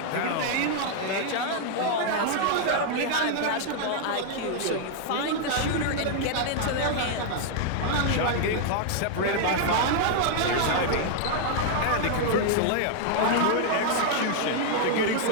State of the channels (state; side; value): different; both; correlation 0.00